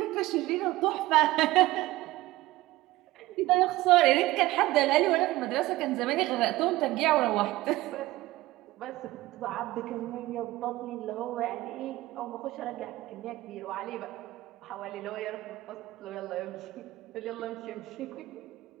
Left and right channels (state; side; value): quieter; left; 18.0 dB